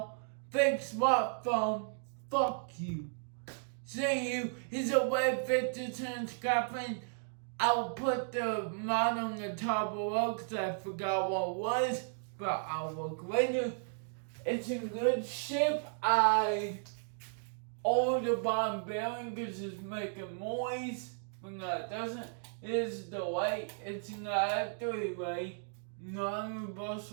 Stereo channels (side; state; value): left; silent; digital silence